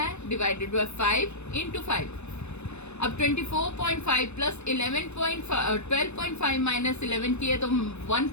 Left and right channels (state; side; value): late; right; 0.81 ms